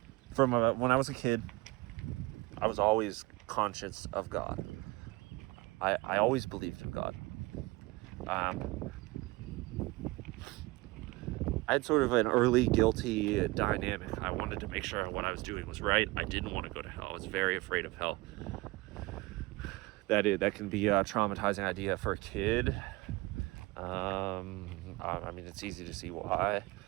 From when I was a kid, I was always conscious of God. I always believed in God. I had sort of an early guilty dynamic. I wanted to make sure what I was doing was right. I didn't want to go to hell. I was very afraid of hell. That can be a traumatizing idea for a kid. I mean, it's easy to see why.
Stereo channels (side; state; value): left; quieter; 22.4 dB